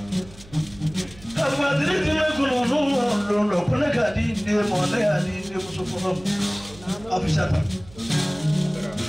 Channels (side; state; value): right; noise; hum, 21 dB below the sound